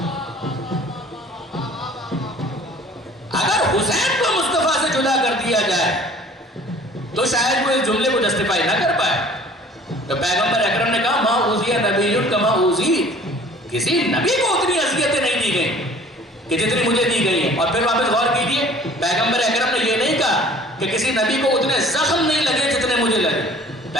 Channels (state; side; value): normal; both; correlation 0.50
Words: اگر حسین کو مصطفیٰ سے جدا کر دیا جائے تو شاید وہ اس جملے کو جسٹیفائی نہ کر پائے. تو پیغمبر اکرم نے کہا ما اوذی نبی کما اوذیت, کسی نبی کو اتنی اذیتیں نہیں دی گئیں کہ جتنی مجھے دی گئی ہیں. اور پھر واپس غور کیجئے, پیغمبر اکرم نے یہ نہیں کہا کہ کسی نبی کو اتنے زخم نہیں لگے جتنے مجھے لگے.